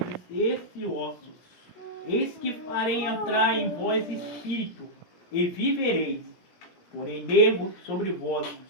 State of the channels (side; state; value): right; late; 17 ms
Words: esse osso: Eis que farei entrar em vós espírito, e vivereis. Porém nervos sobre vós,